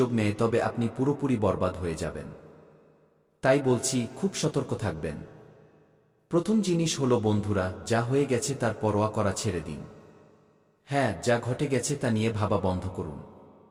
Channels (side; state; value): both; identical; correlation 1.00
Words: নেয় তবে আপনি পুরোপুরি বরবাদ হয়ে যাবেন। তাই বলছি, খুব সতর্ক থাকবেন। প্রথম জিনিস হলো বন্ধুরা, যা হয়ে গেছে তার পরোয়া করা ছেড়ে দিন। হ্যাঁ, যা ঘটে গেছে তা নিয়ে ভাবা বন্ধ করুন।